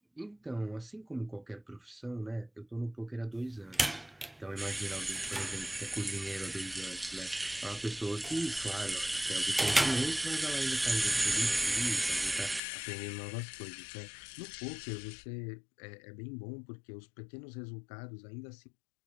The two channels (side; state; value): right; drops out; at 12.6 s